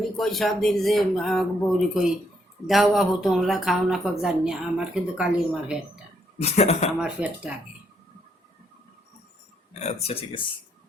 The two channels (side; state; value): both; normal; correlation 0.74